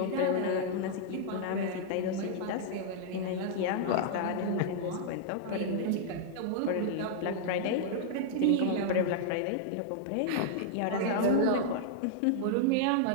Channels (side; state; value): both; different; correlation -0.01